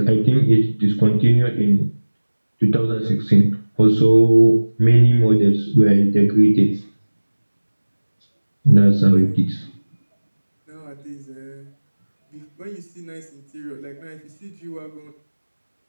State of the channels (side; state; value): both; inverted; correlation -1.00